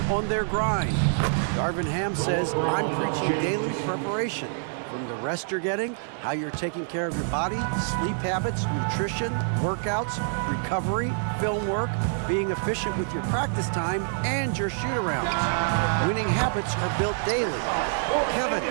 on their grind. Darvin Ham says, I'm preaching daily preparation. From the rest you're getting, how you're taking care of your body, sleep habits, nutrition, workouts, recovery, film work, being efficient with your practice time, and your shoot-arounds. Winning habits are built daily. Kevin,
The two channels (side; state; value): left; silent; digital silence